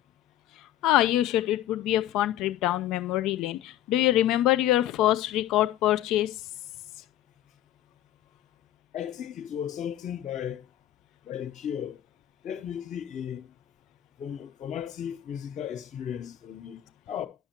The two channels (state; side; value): quieter; right; 12.9 dB